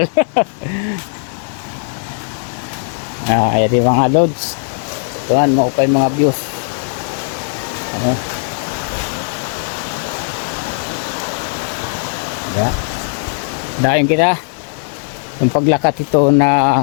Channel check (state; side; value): silent; right; digital silence